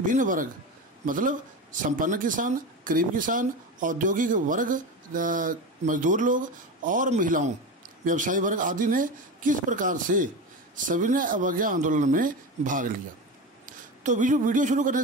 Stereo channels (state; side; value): normal; both; correlation 0.23